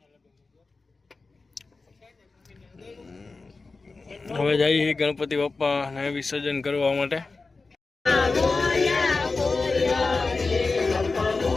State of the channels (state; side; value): quieter; right; 3.9 dB